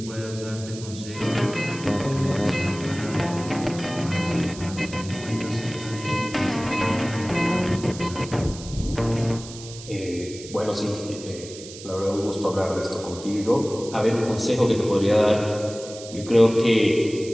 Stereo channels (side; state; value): right; noise; hiss, 14 dB below the sound